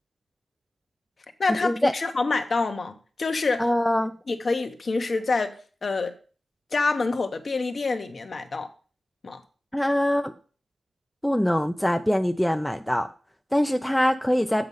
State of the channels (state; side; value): normal; both; correlation 0.97